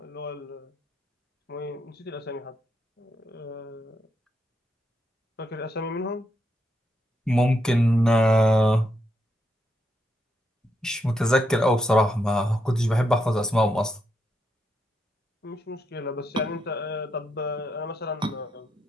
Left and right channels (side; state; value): both; normal; correlation 0.81